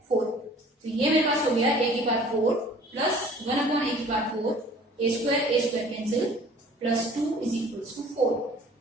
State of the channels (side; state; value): both; normal; correlation 0.50